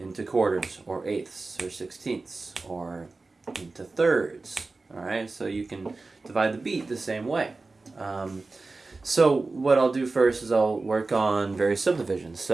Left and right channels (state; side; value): quieter; left; 3.6 dB